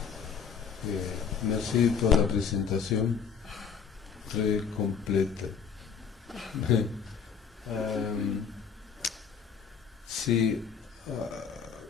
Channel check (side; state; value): right; quieter; 6.7 dB